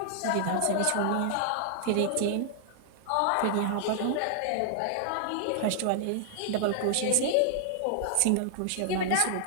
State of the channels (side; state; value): both; different; correlation -0.01